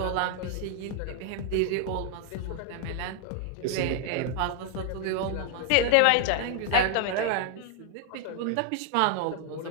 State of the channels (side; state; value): both; different; correlation 0.00